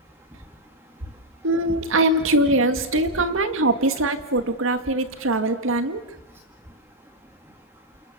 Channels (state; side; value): normal; both; correlation -0.02